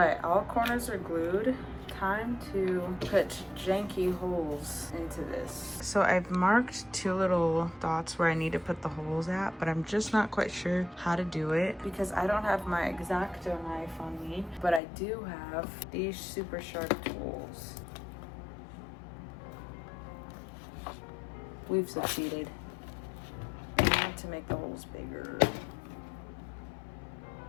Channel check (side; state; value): right; drops out; at 14.8 s